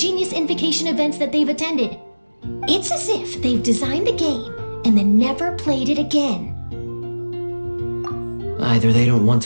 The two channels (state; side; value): inverted; both; correlation -1.00